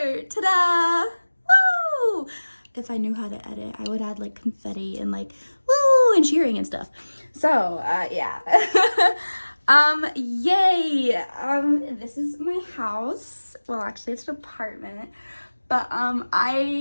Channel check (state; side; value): inverted; both; correlation -1.00